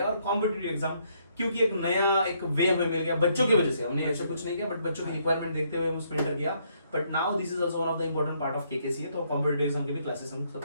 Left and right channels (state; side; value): inverted; both; correlation -0.71